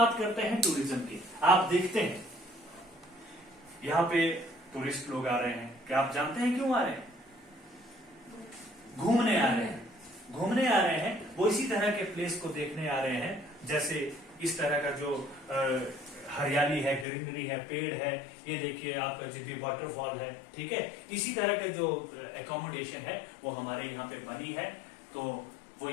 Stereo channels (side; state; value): right; drops out; at 17.1 s